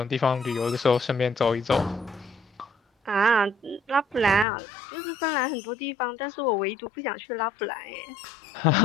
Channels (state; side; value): drops out; right; at 4.5 s